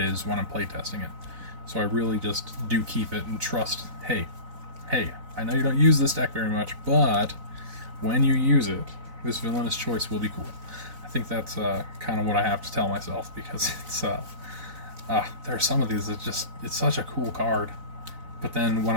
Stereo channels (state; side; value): late; left; 4.0 ms